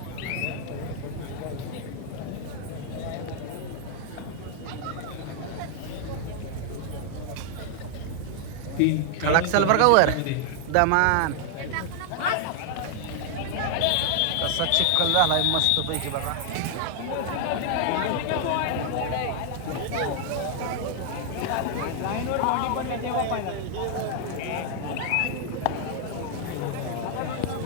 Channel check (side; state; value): both; different; correlation 0.00